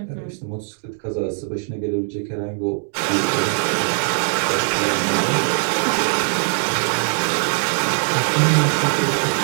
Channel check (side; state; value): left; silent; digital silence